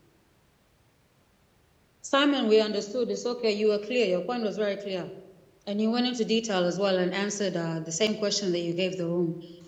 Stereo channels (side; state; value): both; identical; correlation 1.00